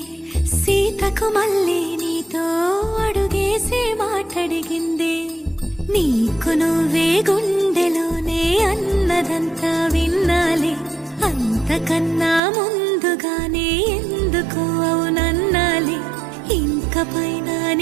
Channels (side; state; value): left; drops out; at 12.4 s